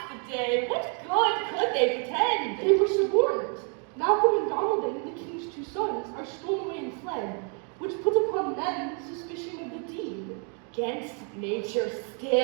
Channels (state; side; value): quieter; left; 39.9 dB